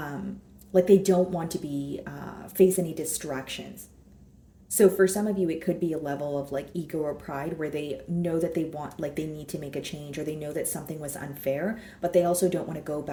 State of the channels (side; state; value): both; identical; correlation 1.00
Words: they don't want to be, face any distractions. So for some of you, it could be a level of like ego or pride where they know that they want, like they need to make a change, or they know that something was unfair, but they also don't want to go